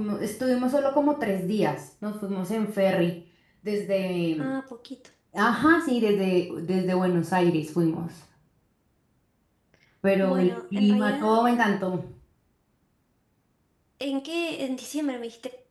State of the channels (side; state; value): both; identical; correlation 1.00